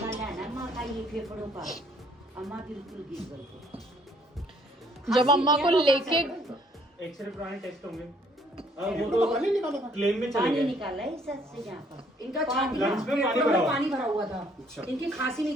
है ना माँ का, ये फेफड़ों का। अम्मा बिल्कुल गिर गई। जब अम्मा को लेके एक्सरे पुराने टेस्ट होंगे, वो तो क्लेम में चले पानी गए। निकाला है सर से यहाँ पर। इनका छाती लंग्स में पानी भरा हुआ था, इनकी खांसी नहीं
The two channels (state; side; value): normal; both; correlation 0.63